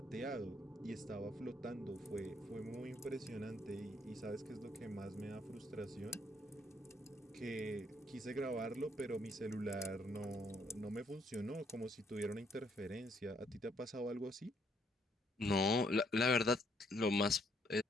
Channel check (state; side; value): normal; both; correlation 0.69